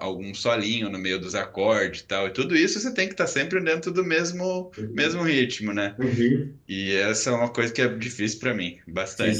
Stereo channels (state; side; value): identical; both; correlation 1.00